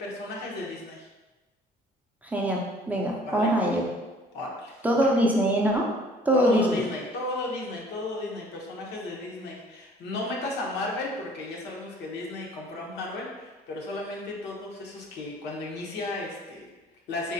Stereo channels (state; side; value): normal; both; correlation 0.54